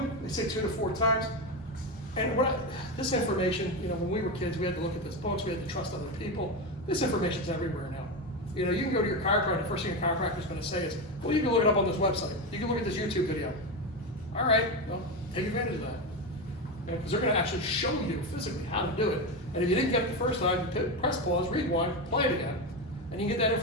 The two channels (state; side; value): normal; both; correlation 0.15